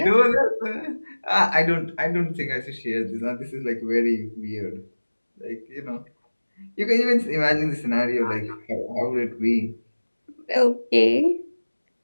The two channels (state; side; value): inverted; both; correlation -1.00